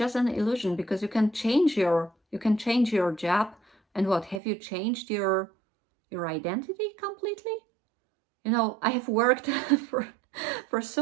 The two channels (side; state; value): left; drops out; at 4.4 s